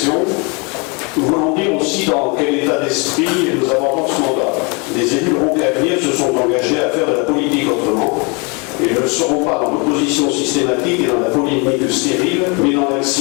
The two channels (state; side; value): quieter; right; 31.4 dB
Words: Nous voulons dire aussi dans quel état d'esprit nous abordons ce mandat. Les élus roncaviens se sont engagés à faire de la politique autrement et ne seront pas dans l'opposition systématique et dans la polémique stérile, mais dans